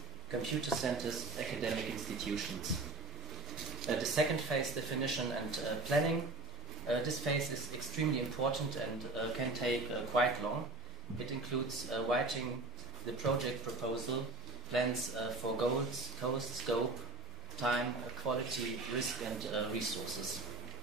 computer centers, academic institutions. The second phase, definition and planning. This phase is extremely important and can take quite long. It includes writing the project proposal, plans for goals, cost, scope, time, quality, risk, and resources.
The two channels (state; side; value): quieter; left; 3.1 dB